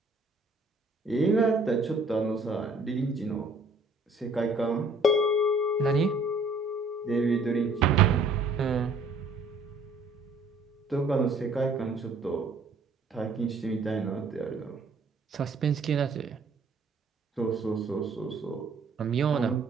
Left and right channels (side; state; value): left; quieter; 3.2 dB